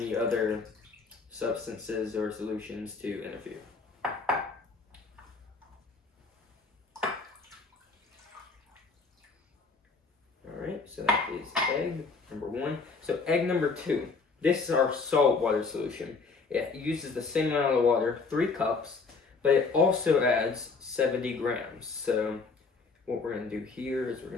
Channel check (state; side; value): quieter; right; 4.4 dB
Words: other substances or solutions to interfere. Alright, so that is egg number 1. So egg number 2. This is our salt water solution. It uses the same amount of water, 3 cups, but it also adds 70 grams. So what we're going to do here is we're